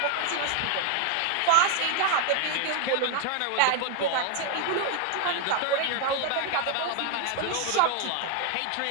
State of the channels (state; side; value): different; both; correlation 0.01